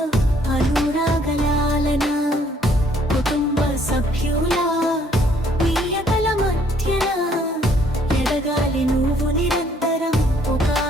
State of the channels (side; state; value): both; normal; correlation 0.65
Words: అనురాగలాలన కుటుంబ సభ్యుల ప్రియతల మధ్యన ఎదగాలి నువ్వు నిరంతరం ఒక